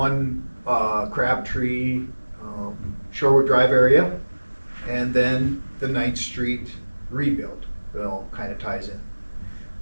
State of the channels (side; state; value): both; inverted; correlation -1.00